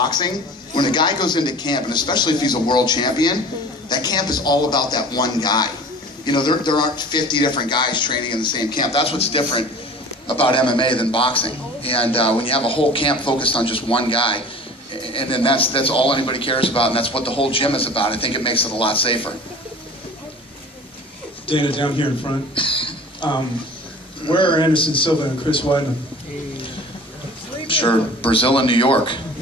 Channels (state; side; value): normal; both; correlation 0.42